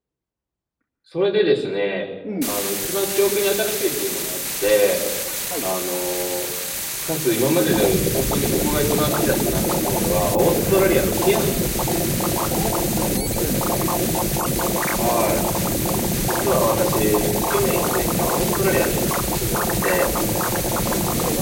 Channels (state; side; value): identical; both; correlation 1.00